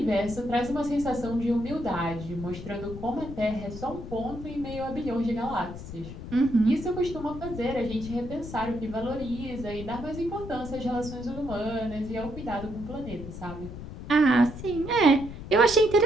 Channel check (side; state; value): left; noise; rumble, 10 dB below the sound